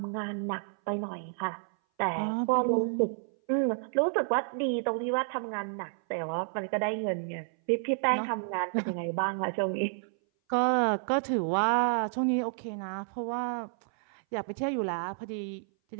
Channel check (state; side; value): silent; left; 57 dB below the other